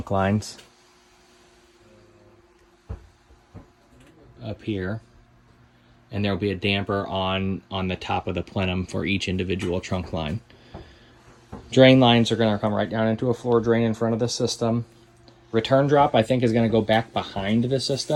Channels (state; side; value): identical; both; correlation 1.00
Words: lines up here, and there will be a damper on the top of the plenum for each individual trunk line. Drain lines are going to come right down into a floor drain in front of the system. Return drop, I think, is going to go back behind the